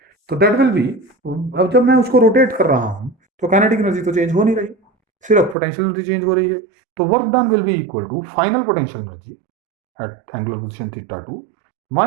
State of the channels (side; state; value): left; drops out; at 5.6 s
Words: तो दैट विल बी, अब जब मैं उसको रोटेट कर रहा हूं तो काइनेटिक एनर्जी तो चेंज हो नहीं रही, सिर्फ पोटेंशियल एनर्जी चेंज हो रही है। तो work done will be equal to final potential energy at angular position θ2